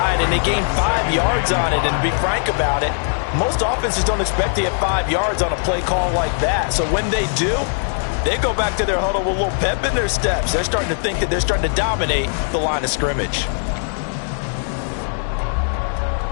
and they gained 5 yards on it. And to be frank about it, most offenses don't expect to get 5 yards on a play call like that. So when they do, they go back to their huddle with a little pep in their steps. They're starting to think that they're starting to dominate the line of scrimmage.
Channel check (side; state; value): right; silent; 66 dB below the other